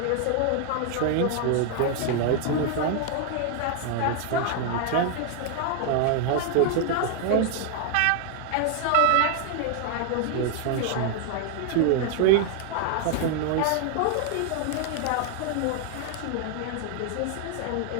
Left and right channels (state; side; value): different; both; correlation 0.00